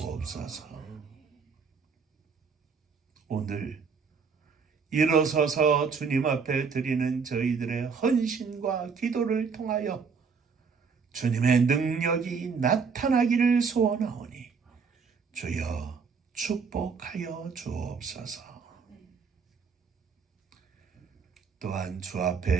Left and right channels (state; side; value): quieter; left; 5.5 dB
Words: 오늘 일어서서 주님 앞에 드리는 저희들의 헌신과 기도를 통하여 주님의 능력이 나타나기를 소원하오니 주여 축복하여 주옵소서. 또한 주